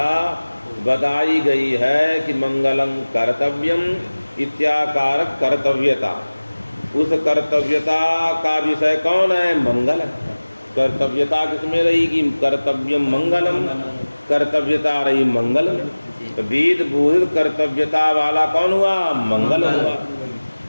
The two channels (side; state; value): both; inverted; correlation -1.00